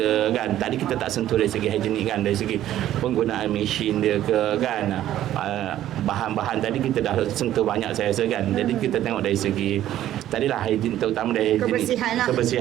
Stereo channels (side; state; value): left; quieter; 12.6 dB